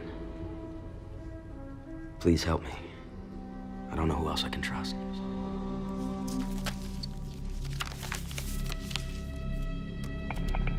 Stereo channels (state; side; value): identical; both; correlation 1.00